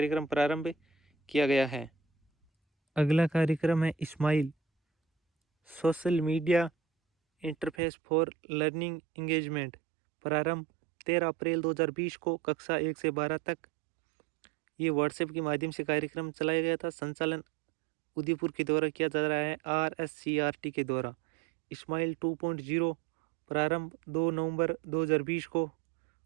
प्रारंभ किया गया है। अगला कार्यक्रम है SMILE Social Media Interface for Learning Engagement. प्रारंभ 13 अप्रैल 2020 को, कक्षा 1 से 12 तक। ये व्हाट्सएप के माध्यम से कार्यक्रम चलाया गया था। संचालन उदयपुर के द्वारा किया जा रहा है RSCRT के द्वारा। इस्माइल 2.0 प्रारंभ 2 नवंबर 2020 को,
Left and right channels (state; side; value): drops out; left; at 7.8 s